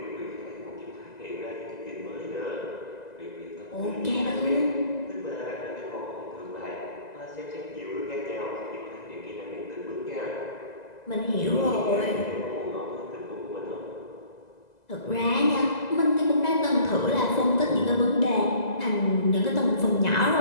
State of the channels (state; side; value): late; right; 2.0 ms